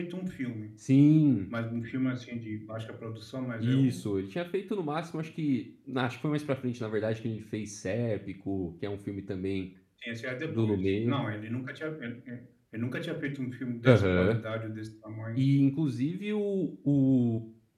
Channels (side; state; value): both; identical; correlation 1.00